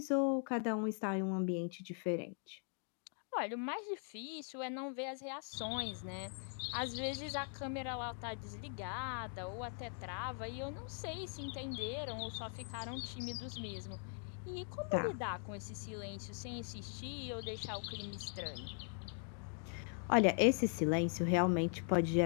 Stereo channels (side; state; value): right; silent; 51 dB below the other